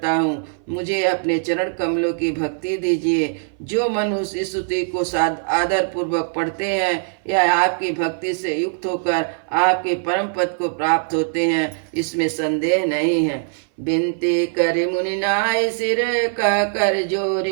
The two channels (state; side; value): silent; left; 60 dB below the other